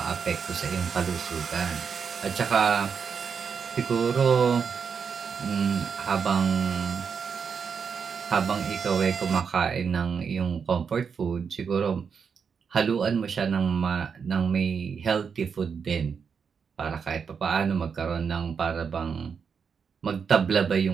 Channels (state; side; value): quieter; left; 6.3 dB